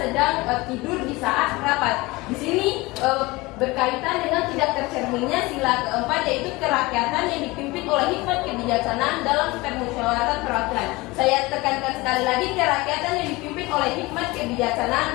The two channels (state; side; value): quieter; right; 22.2 dB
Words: tidur di saat rapat. Di sini berkaitan dengan tidak tercerminnya sila keempat, yaitu kerakyatan yang dipimpin oleh hikmat kebijaksanaan dalam permusyawaratan perwakilan. Saya tekankan sekali lagi, kerakyatan yang dipimpin oleh hikmat kebijaksanaan